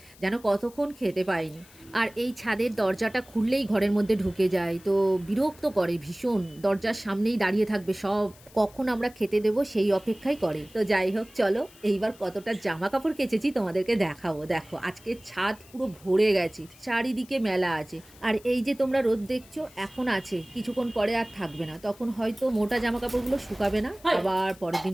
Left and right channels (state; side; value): noise; left; hiss, 24 dB below the sound